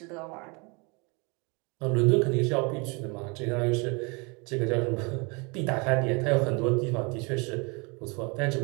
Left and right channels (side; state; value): left; quieter; 30.2 dB